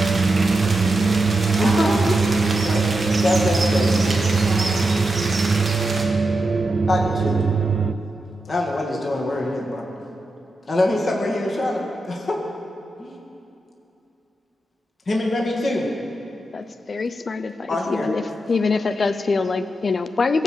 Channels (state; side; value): normal; both; correlation 0.87